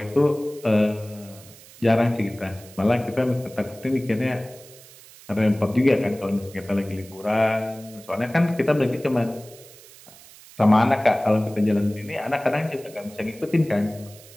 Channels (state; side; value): noise; right; hiss, 21 dB below the sound